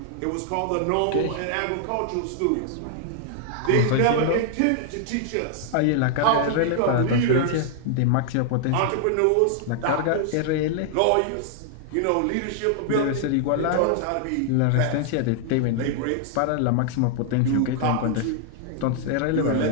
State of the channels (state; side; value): different; both; correlation -0.01